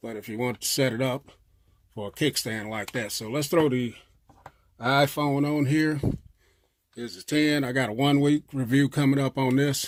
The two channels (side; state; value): both; identical; correlation 1.00